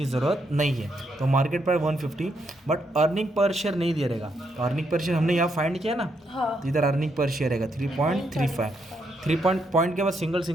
ज़रूरत नहीं है। तो market price 150, but earning per share नहीं दिया रहेगा। तो अर्निंग पर शेयर हमने यहाँ फाइंड किया ना, तो इधर अर्निंग पर शेयर रहेगा 3.35। 3 पॉइंट के बाद सिंगल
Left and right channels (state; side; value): normal; both; correlation 0.78